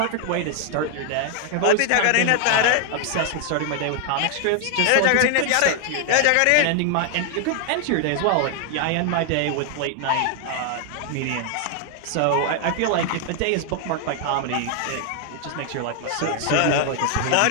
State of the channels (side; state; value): both; different; correlation 0.00